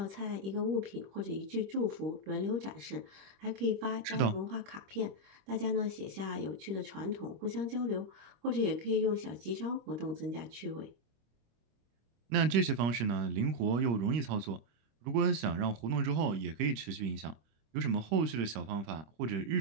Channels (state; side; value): late; left; 25 ms